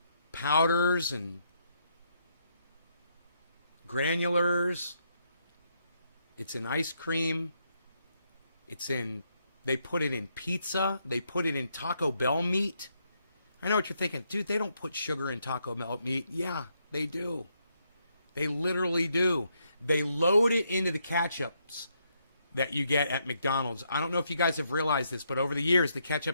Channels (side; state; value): both; inverted; correlation -0.77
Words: powders and granulars. It's in ice cream. It's in, they put it in pizza. They put it in Taco Bell meat. I know what you're thinking. Dude, they don't put sugar in Taco Bell meat. Yeah, they do. They literally do. They load it into the ketchups that you get at McDonald's. I don't know if you guys have realized this, but over the years, the